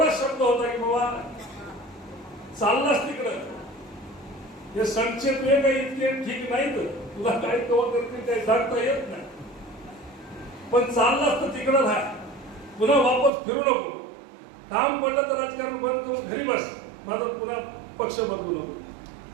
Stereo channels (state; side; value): drops out; left; at 13.3 s